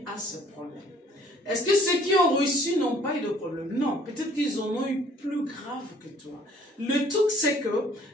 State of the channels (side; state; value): both; normal; correlation 0.57